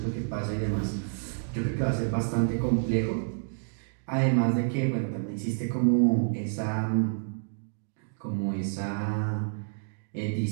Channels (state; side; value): silent; left; digital silence